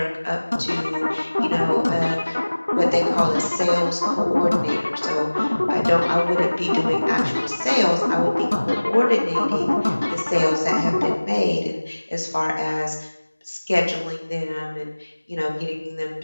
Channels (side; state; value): both; inverted; correlation -1.00